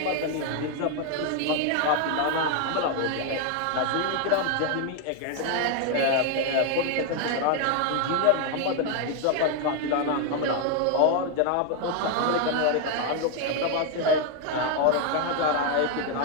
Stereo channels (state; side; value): different; both; correlation 0.01